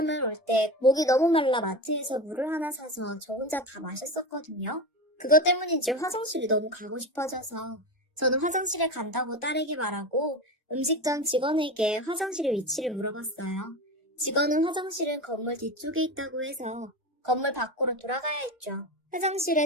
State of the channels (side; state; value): both; normal; correlation 0.24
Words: 올 때 목이 너무 말라 마트에서 물을 하나 사서 저 혼자 다 마셨었거든요. 그것 때문인지 화장실이 너무 가고 싶어져서 저는 화장실에 간다고 딸에게 말하고 음식점 직원에게 화장실의 위치를 물어봤어요. 직원은 화장실은 건물 뒤쪽에 있다고 해서 건물 밖으로 돌아가야 했죠.